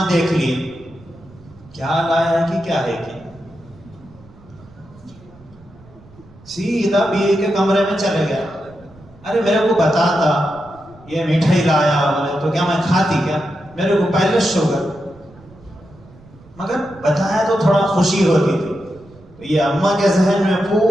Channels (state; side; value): noise; right; rumble, 24 dB below the sound